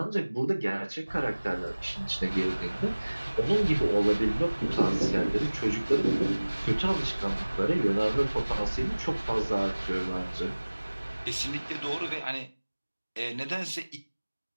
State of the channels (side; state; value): both; inverted; correlation -1.00